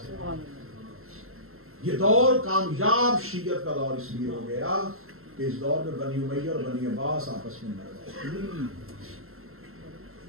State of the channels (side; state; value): left; late; 0.62 ms